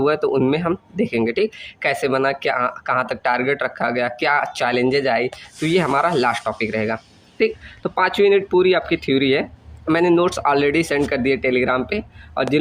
है, तो उनमें हम देखेंगे। ठीक, कैसे बना, क्या कहाँ तक टारगेट रखा गया, क्या चैलेंजेज आई, तो ये हमारा लास्ट टॉपिक रहेगा। ठीक, तो 5 यूनिट पूरी आपकी थ्योरी है। मैंने नोट्स ऑलरेडी सेंड कर दिए टेलीग्राम पे, और जिन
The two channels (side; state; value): both; identical; correlation 1.00